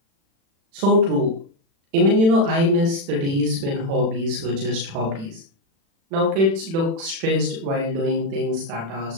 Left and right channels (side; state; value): left; late; 36 ms